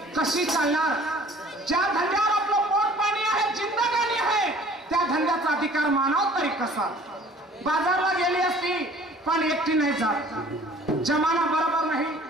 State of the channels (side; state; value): both; normal; correlation 0.51